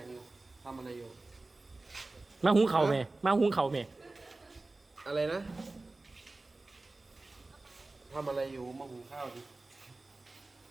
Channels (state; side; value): quieter; left; 3.2 dB